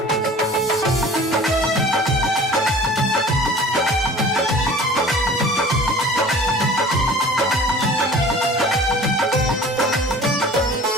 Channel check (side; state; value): both; normal; correlation 0.44